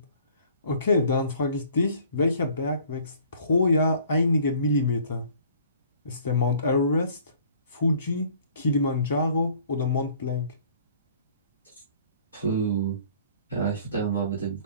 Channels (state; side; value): inverted; both; correlation -0.54